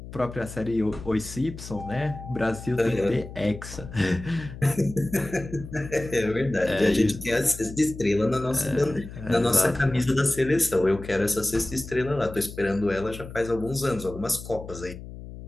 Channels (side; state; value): left; noise; hum, 13 dB below the sound